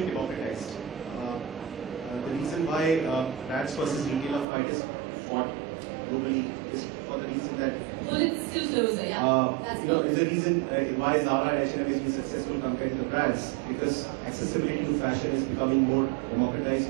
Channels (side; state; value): left; drops out; at 4.5 s